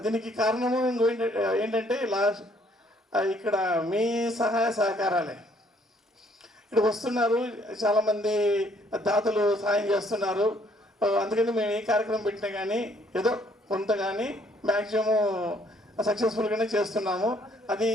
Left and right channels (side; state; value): both; normal; correlation 0.64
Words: దీనికి కారణము ఏంటంటే ఇక్కడ మీ సహాయ సహకారాలే. ఇక్కడ వస్తున్నారు చాలామంది దాతలు సహాయం చేస్తున్నారు. అందుకని మేము ఏ కార్యక్రమం పెట్టినా కానీ ఏదో కొంత కానీ మ్యాక్సిమం సక్సెస్ఫుల్గానే చేస్తున్నాము. అది